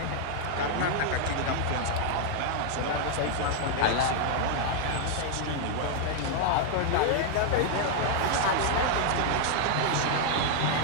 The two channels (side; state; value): both; different; correlation 0.00